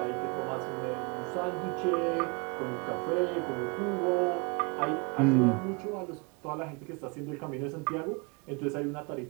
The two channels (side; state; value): left; quieter; 30.7 dB